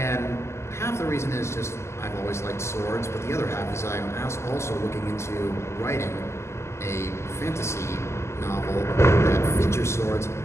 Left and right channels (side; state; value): right; late; 0.13 ms